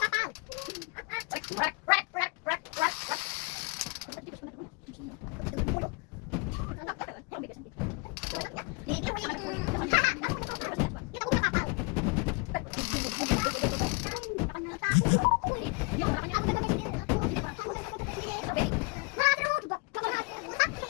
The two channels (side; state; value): right; quieter; 30.2 dB